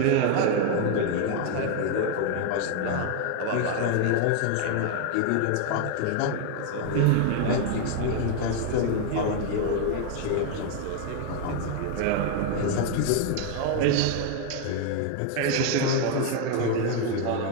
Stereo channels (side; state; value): both; different; correlation 0.01